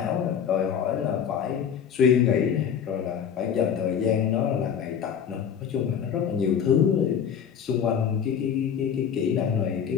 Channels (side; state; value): right; quieter; 7.9 dB